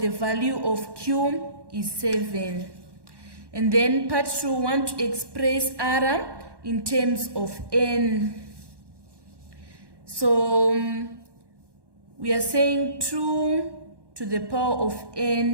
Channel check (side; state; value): left; late; 1.1 ms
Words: value of Q is 7. And then part 2, we want to express R in terms of N. So we are saying 2 to the power of